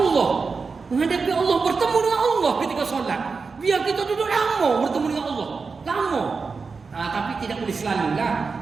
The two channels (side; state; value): left; quieter; 4.7 dB